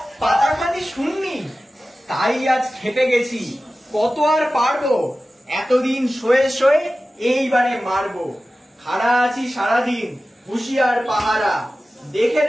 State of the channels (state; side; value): normal; both; correlation 0.95